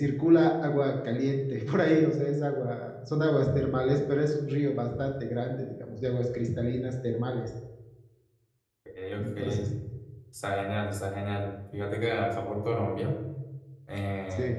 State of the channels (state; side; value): identical; both; correlation 1.00